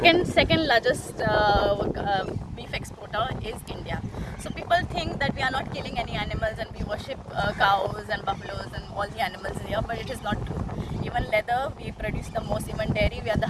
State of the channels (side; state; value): both; identical; correlation 1.00